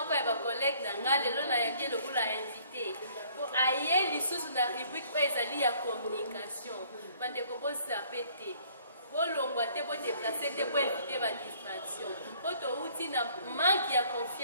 ya bacollègue na nga lelo nayangi lokola invité po aye lisusu na rubrique oyo ezali ya communication bandeko bozape te bolongwa te bodeplace te boevite badistraction po touti na manque ya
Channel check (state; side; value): inverted; both; correlation -0.59